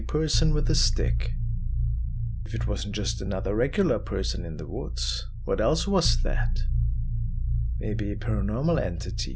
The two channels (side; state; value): both; identical; correlation 1.00